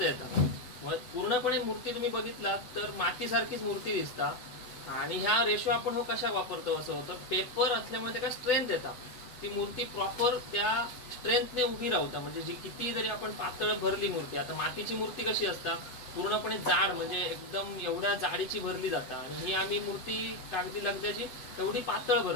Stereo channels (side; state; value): right; late; 8.1 ms